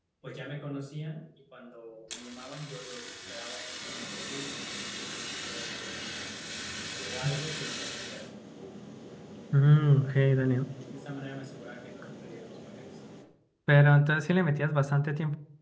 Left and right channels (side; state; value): both; identical; correlation 1.00